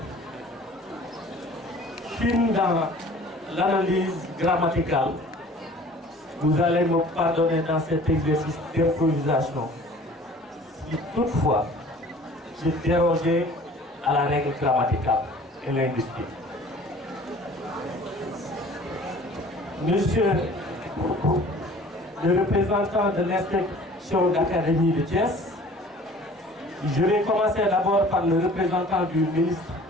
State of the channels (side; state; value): both; normal; correlation 0.48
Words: fine dans l'analyse grammaticale. Vous allez me pardonner dans cet exercice d'improvisation si toutefois j'ai dérogé à la règle grammaticale et linguistique. Monsieur le représentant de l'inspection d'académie de Thiès, je vais commencer d'abord par le représentant du ministre